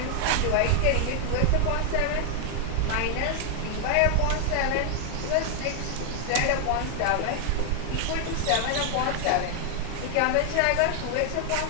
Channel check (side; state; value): both; different; correlation 0.00